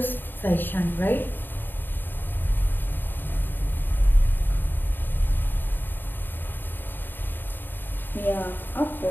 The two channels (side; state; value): right; late; 0.094 ms